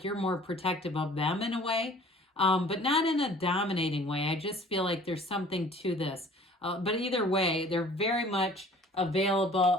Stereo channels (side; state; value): both; normal; correlation 0.50